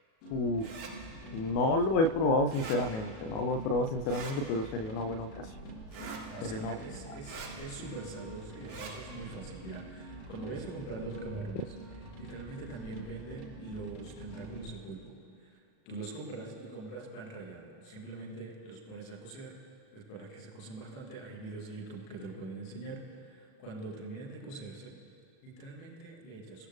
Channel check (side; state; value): right; late; 37 ms